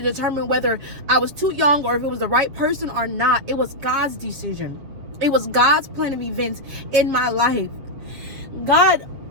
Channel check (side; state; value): left; late; 7.4 ms